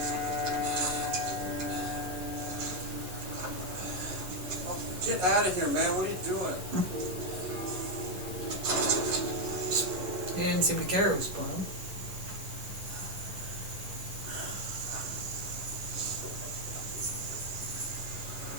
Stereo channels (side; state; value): left; late; 11 ms